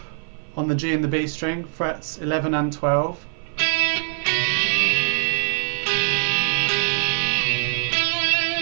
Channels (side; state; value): left; silent; 57 dB below the other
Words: on the G and the B string, frets 11 and 12.